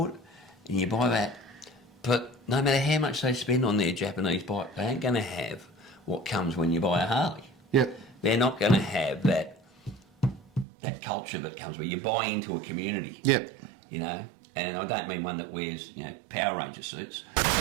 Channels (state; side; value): drops out; left; at 10.7 s